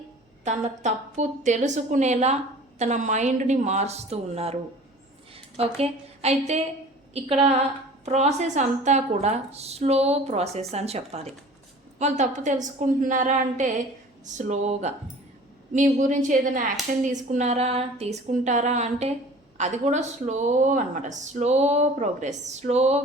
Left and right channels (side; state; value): both; normal; correlation 0.45